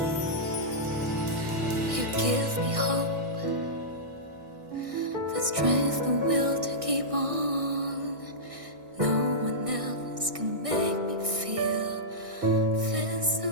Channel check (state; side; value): late; left; 1.6 ms